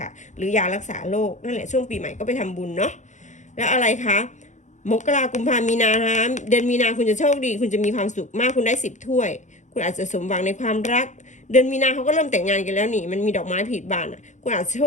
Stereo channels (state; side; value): late; right; 0.35 ms